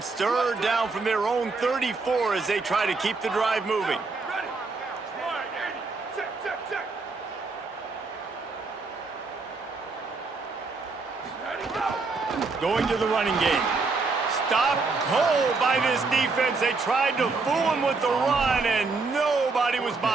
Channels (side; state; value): left; quieter; 4.0 dB